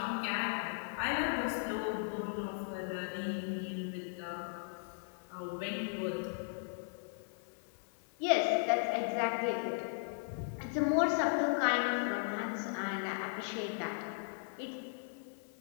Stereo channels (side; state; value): right; silent; 53 dB below the other